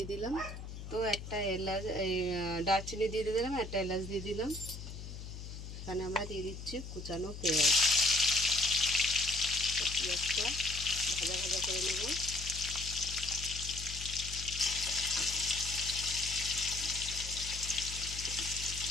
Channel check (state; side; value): noise; left; hum, 10 dB below the sound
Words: দিলাম, তো একটা এলাচ, দারচিনি দিয়ে দিলাম, একটা এলাচ দিয়ে দিলাম। এখানে আমরা দিয়ে দিচ্ছি কুচানো পেঁয়াজ। পেঁয়াজটা ভাজা ভাজা করে নেব।